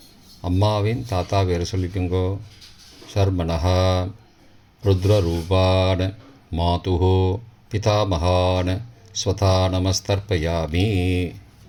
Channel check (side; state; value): both; identical; correlation 1.00